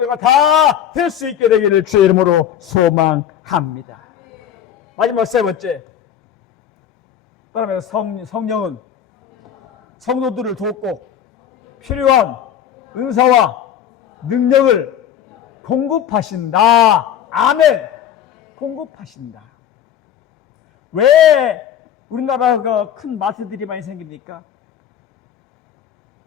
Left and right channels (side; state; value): right; quieter; 9.6 dB